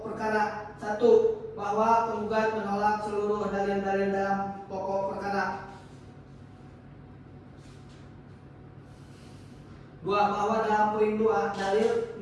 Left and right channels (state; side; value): identical; both; correlation 1.00